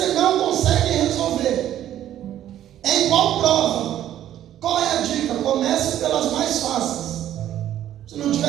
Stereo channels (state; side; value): quieter; left; 11.9 dB